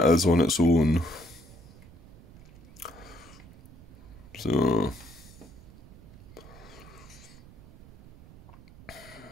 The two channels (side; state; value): right; noise; rumble, 20 dB below the sound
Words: is on its own. So